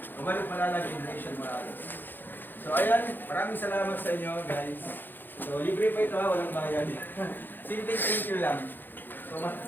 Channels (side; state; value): right; late; 0.092 ms